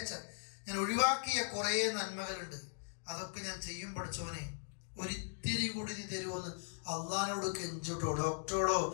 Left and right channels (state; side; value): silent; right; digital silence